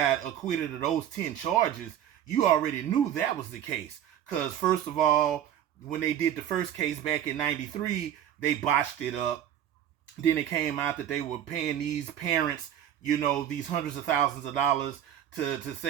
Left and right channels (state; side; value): quieter; left; 10.5 dB